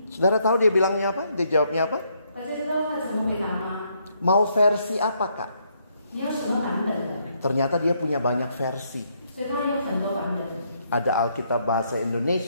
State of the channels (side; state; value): both; inverted; correlation -0.73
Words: Saudara tahu dia bilangnya apa? Dia jawabnya apa? 大家知道他怎么回答吗？ Mau versi apa kak? 你要什么版本的？ Ternyata dia punya banyak versi. 所以他有很多版本。 Ada Alkitab bahasa